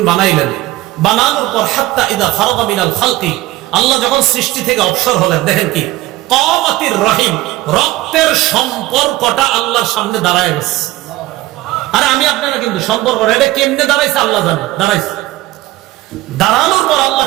বানাইলেন। বানানোর পর হাত্তা ইদা ফারাগা মিনাল খালকি, আল্লাহ যখন সৃষ্টি থেকে অবসর হলেন, দেখেন কি কামাতির রহিম, রক্তের সম্পর্কটা আল্লাহর সামনে দাঁড়ায় গেছে। আরে আমি আপনারা কিন্তু সম্পর্ক এটা কেমনে দাঁড়াইছে আল্লাহ জানে, দাঁড়াইছে। দাঁড়ানোর পর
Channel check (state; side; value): quieter; left; 17.1 dB